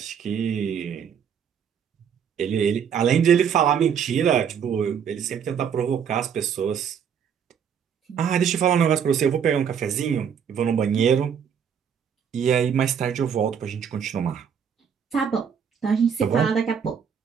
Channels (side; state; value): left; quieter; 7.7 dB